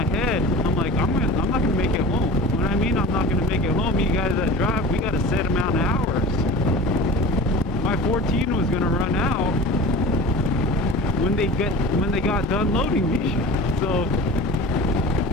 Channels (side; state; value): both; normal; correlation 0.37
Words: head, I'm like, I'm not gonna make it home. When I mean I'm not gonna make it home, you guys that drive, we got a set amount of hours. My 14 was gonna run out when they got done loading me. So